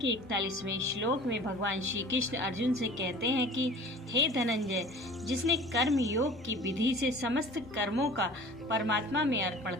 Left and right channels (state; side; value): normal; both; correlation 0.44